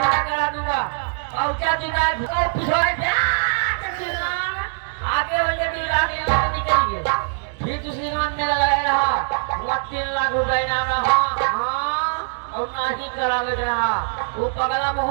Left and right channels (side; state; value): left; silent; digital silence